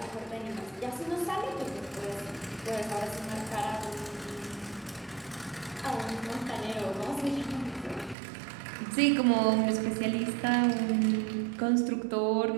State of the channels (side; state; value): left; drops out; at 8.2 s